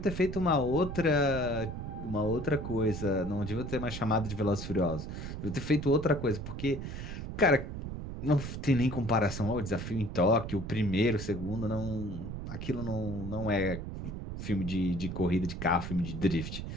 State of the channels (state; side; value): noise; right; rumble, 7 dB below the sound